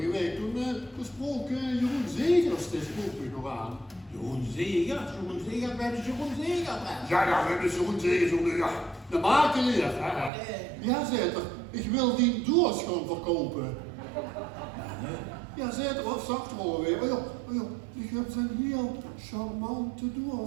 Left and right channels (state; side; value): drops out; left; at 10.3 s